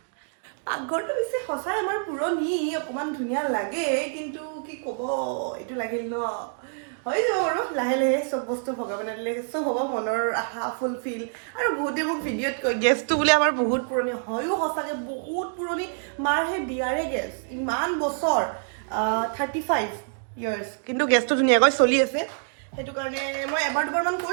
পাকঘৰটো বেছি সঁচাই আমাৰ পুৰণি অকণমান ধুনীয়া লাগে কিন্তু কি ক'ব এইটো লাগিল ন হৈ যাব আৰু লাহে লাহে চব বস্তু ভগৱানে দিলে চব হ'ব। মনৰ আশা ফুলফিল। আৰু বহুতে মোক ভিডিঅ'ত কয় গেছটো বোলে আমাৰ বহুত পুৰণি। হয়ো সঁচাকৈ বহুত পুৰণি। মাৰ সেই বিয়াৰে গেছ ইমান বছৰ 35 years কিন্তু গেছটো ধুনীয়াকৈ চলি আছে। সেইটো কাৰণে মই এবাৰ দুবাৰমান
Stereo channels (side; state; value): left; silent; digital silence